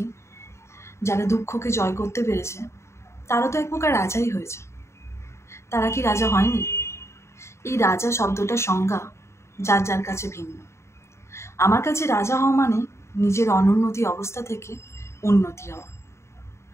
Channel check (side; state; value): right; late; 0.13 ms